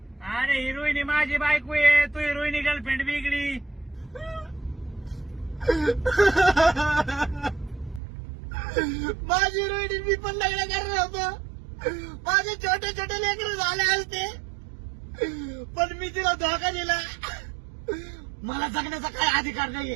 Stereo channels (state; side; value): drops out; left; at 8.0 s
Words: अरे ही रोहिणी माझी बायको आहे, तू ही रोहिणी गर्लफ्रेंड वेगळी. माझी रोहिणी मी पण लग्न करणार होतो. माझे छोटे छोटे लेकर झाले असते, पण मी तिला धोका दिला. मला जगण्याचा काय अधिकार